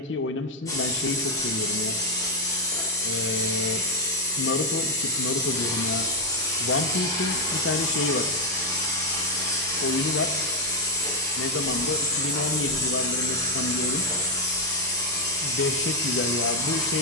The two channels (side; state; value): both; normal; correlation 0.02